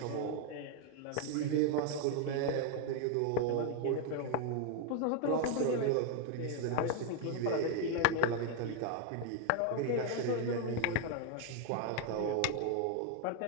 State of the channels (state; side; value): different; both; correlation 0.00